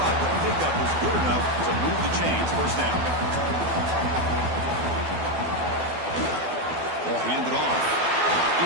the pickup is good enough to move the chains. First down. Ball handed off.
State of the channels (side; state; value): left; late; 12 ms